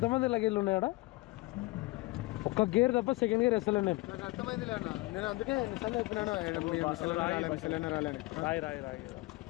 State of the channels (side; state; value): right; quieter; 22.1 dB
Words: లగేజ్లు ఉన్నాయాడా? ఒక్క గేర్ తప్ప సెకండ్ గేర్ వేస్తలే నేను. నాకు అర్థమైంది అన్న, నేను అందుకే ఎన్నిసార్లు చెప్పినాను రాలని. రాయి రాయి రాయి